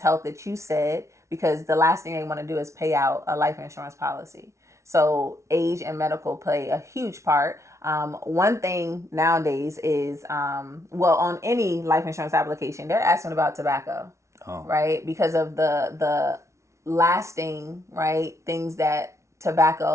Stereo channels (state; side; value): late; left; 0.14 ms